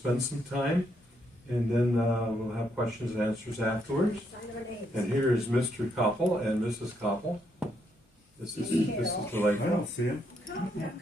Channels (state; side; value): normal; both; correlation 0.76